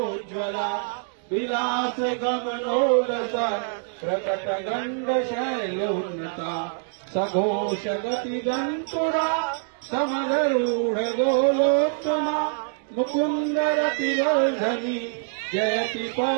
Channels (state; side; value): silent; left; digital silence